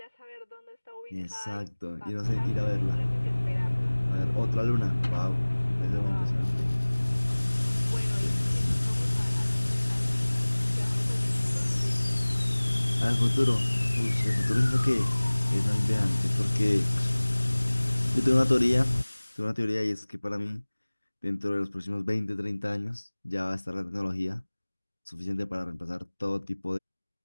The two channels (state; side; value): inverted; both; correlation -1.00